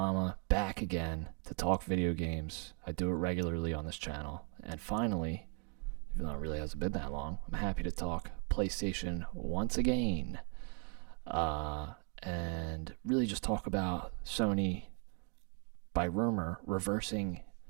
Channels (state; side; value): quieter; left; 36.5 dB